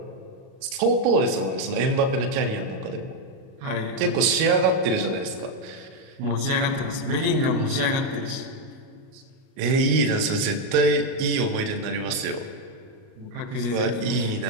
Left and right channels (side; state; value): left; late; 38 ms